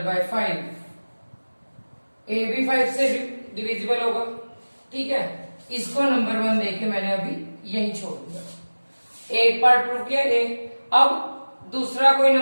by 5। a भी 5 से डिविजिबल होगा। ठीक है, इसको नंबर 1 देके मैंने अभी यही छोड़ दिया। एक पार्ट प्रूव किया a। अब दूसरा कोई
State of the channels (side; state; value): both; inverted; correlation -1.00